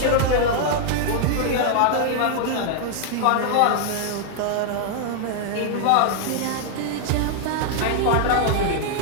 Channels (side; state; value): both; different; correlation 0.00